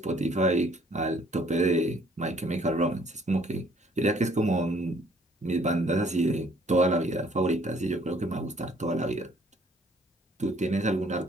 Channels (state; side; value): normal; both; correlation 0.61